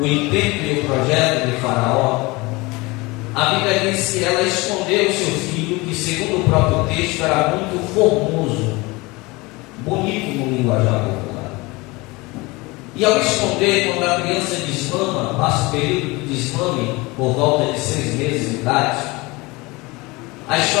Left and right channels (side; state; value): right; quieter; 23.7 dB